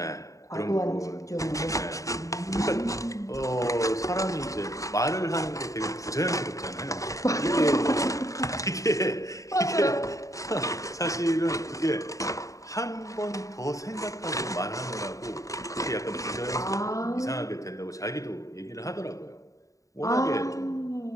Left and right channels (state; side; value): late; right; 0.16 ms